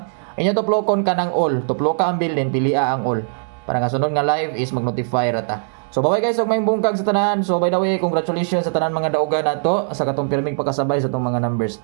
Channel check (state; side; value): silent; left; 66 dB below the other